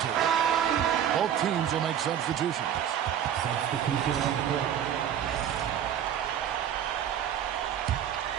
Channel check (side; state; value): left; quieter; 9.6 dB